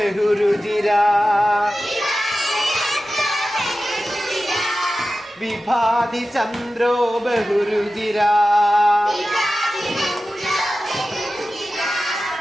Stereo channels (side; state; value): both; normal; correlation 0.94